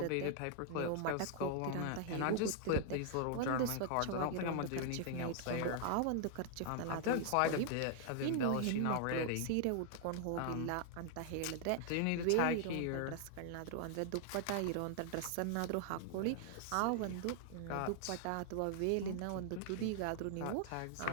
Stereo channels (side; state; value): both; different; correlation 0.00